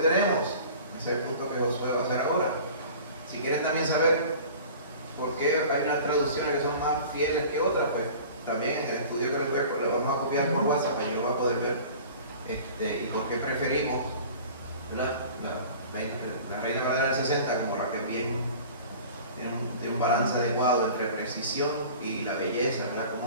Ese es el punto que Josué va a hacer ahora. Si quieren también saber por qué hay unas traducciones que son más fieles que otras, pues también en el estudio que les vamos a copiar por WhatsApp, pues yo lo voy a poder ver. Y por qué preferimos, ¿verdad? La Reina Valera del 60 como la que bien tiene un balance adecuado entre precisión y la belleza, ¿verdad?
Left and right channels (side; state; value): both; inverted; correlation -0.42